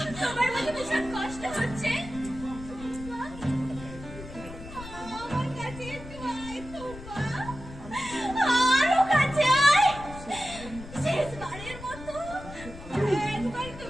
তোমার মধ্যে ভীষণ কষ্ট হচ্ছে। আমার কাছে একটু আয় তোমরা, আরো কাছে আয়। শেষবারের মতো একবার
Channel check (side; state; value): left; noise; rumble, 14 dB below the sound